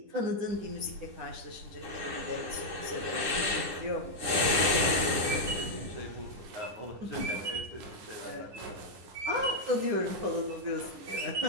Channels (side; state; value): left; late; 9.8 ms